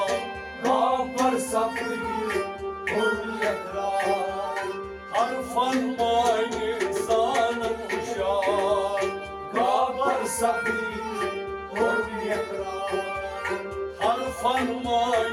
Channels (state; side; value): identical; both; correlation 1.00